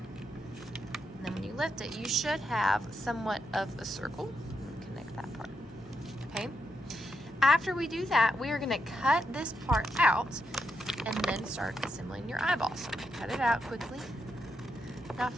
And then when you lift it, you should have somewhat of a circle. Connect that part. Okay. After we do that, we are going to cut this part out and then start assembling your eyeball. So I'm going to cut it out quickly. Now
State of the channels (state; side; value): normal; both; correlation 0.83